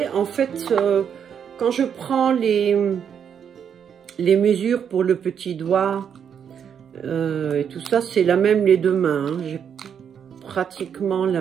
En fait, quand je prends les mesures pour le petit doigt et tout ça, c'est la même les deux mains. Hein. J'ai pratiquement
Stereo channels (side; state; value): left; quieter; 7.9 dB